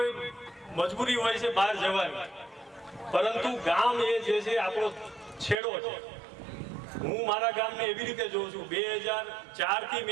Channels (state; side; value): drops out; left; at 5.6 s